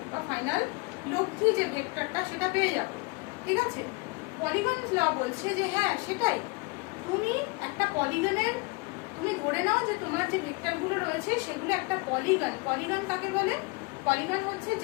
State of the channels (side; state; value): right; quieter; 27.7 dB